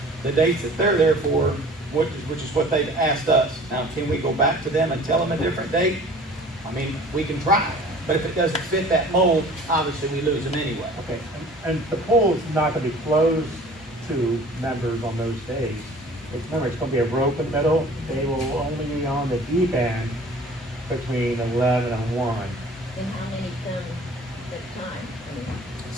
the dates that they're there for, which is what they've asked us. Now, can we go back to them and tell them a different date? I mean, we can try, but if it doesn't fit that mold, obviously we lose them anyway. Okay, and the pool is not gonna be closed to members on those days. Remember, it's gonna be a rope in the middle. They will only be on the deep end between 11 and 1. And how many come at a time? I mean,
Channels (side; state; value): both; normal; correlation 0.47